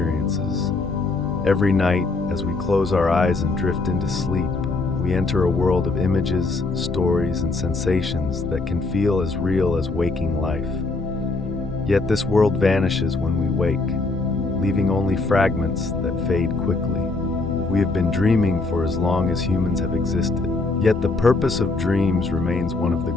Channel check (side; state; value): right; quieter; 3.5 dB